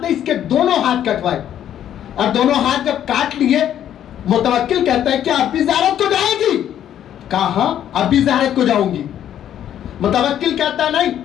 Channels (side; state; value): right; quieter; 10.6 dB